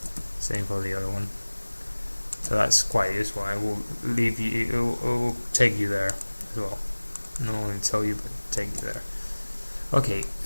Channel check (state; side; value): inverted; both; correlation -1.00